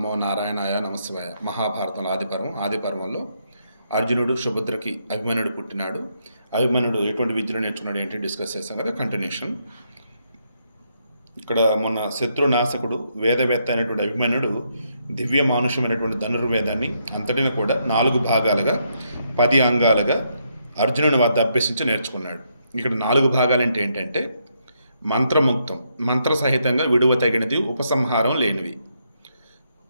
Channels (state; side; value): inverted; both; correlation -0.77